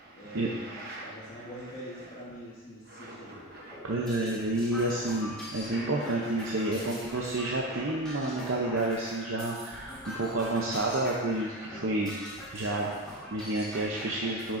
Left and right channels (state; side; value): normal; both; correlation 0.21